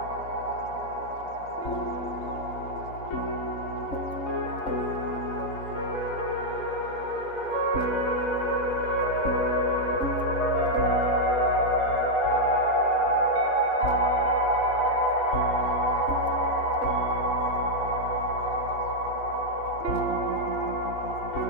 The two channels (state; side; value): late; right; 3.6 ms